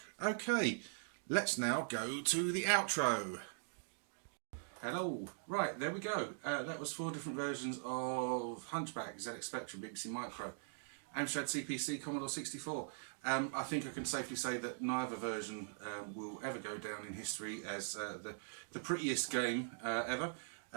Okay, let's now go to the outro. Hello. Right, there we go. That was 4 different versions of Hunchback, ZX Spectrum, BBC Micro, Amstrad CPC, Commodore 64. I think I can safely say that neither version will ever go down in history as the prettiest game ever.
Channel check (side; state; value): left; silent; digital silence